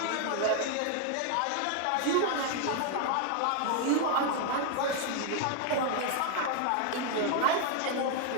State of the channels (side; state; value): both; different; correlation 0.00